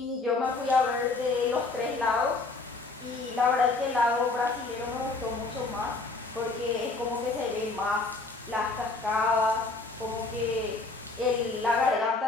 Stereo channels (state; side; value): quieter; right; 3.6 dB